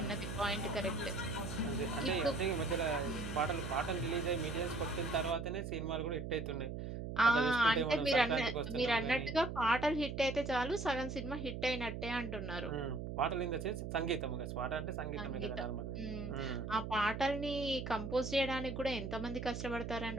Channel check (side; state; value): right; noise; hum, 6 dB below the sound